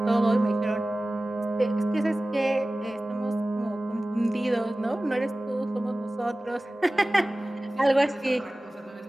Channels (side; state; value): both; normal; correlation 0.97